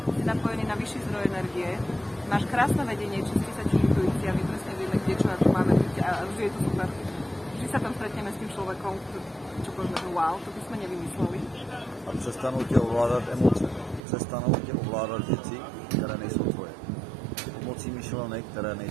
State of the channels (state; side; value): drops out; left; at 14.0 s